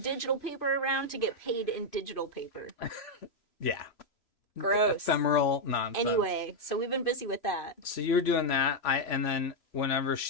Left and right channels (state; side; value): late; right; 3.0 ms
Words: paper around to get paid in digital paper. Yeah. Gross. Ephemeral nonsense. Anyway, so we've been busy with that. So you're doing that. And then whenever